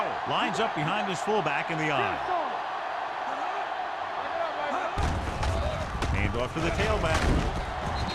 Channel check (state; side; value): identical; both; correlation 1.00